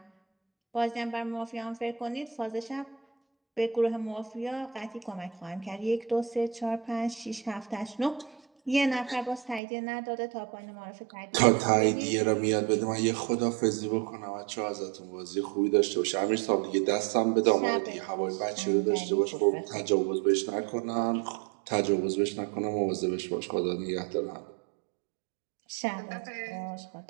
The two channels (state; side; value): drops out; left; at 9.6 s